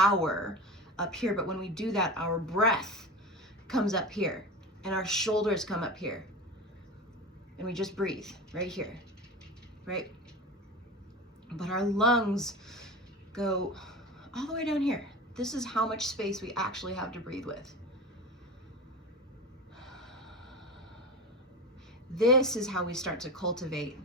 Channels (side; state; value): both; normal; correlation 0.28